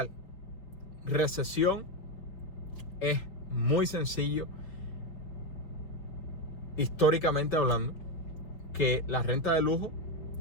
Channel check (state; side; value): late; right; 5.4 ms